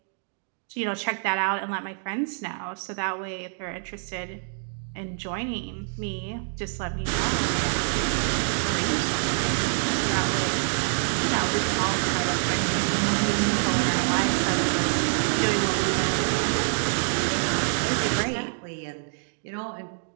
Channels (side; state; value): left; silent; digital silence